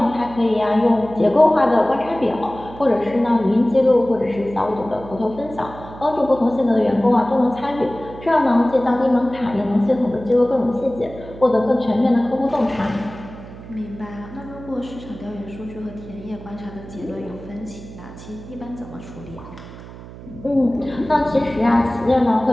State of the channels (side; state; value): right; noise; hum, 15 dB below the sound